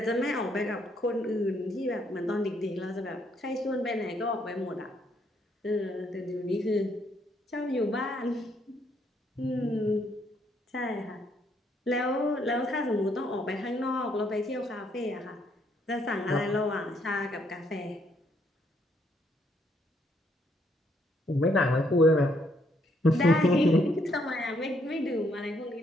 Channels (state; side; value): normal; both; correlation 0.72